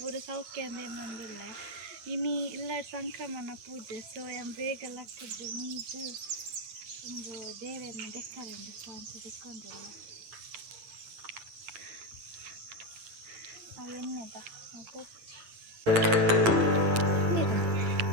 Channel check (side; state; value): left; late; 8.9 ms